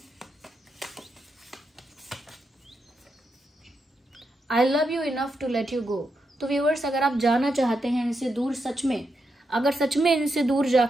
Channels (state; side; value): normal; both; correlation 0.84